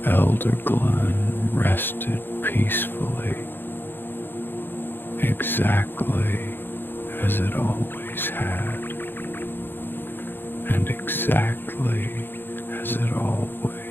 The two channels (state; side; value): late; right; 0.099 ms